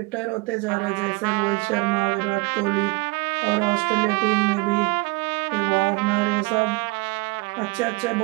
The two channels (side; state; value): left; quieter; 26.2 dB